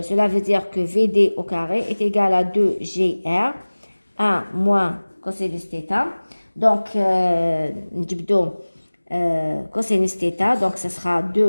veut dire que Vd au carré est égal à 2gr, 1 moins cosinus θ. Donc, cosinus θ, donc ce sera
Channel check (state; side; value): inverted; both; correlation -1.00